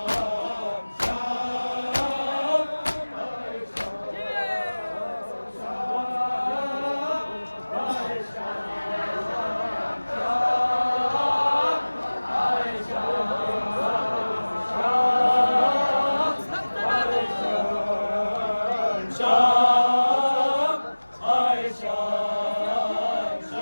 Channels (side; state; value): both; inverted; correlation -1.00